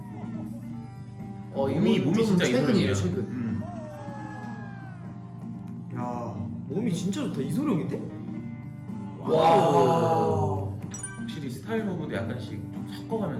몸이 좀 진짜 최근이에요, 이소룡이야. 최근. 야 몸이 진짜 좋다. 이소룡인데? 와. 확실히 스타일 오브도 약간씩 좀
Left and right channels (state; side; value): identical; both; correlation 1.00